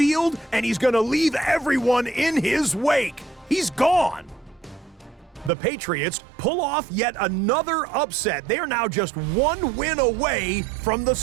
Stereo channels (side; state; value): left; drops out; at 5.5 s